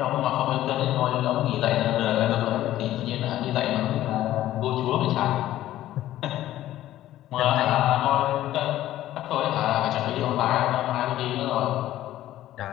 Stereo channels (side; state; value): right; quieter; 13.8 dB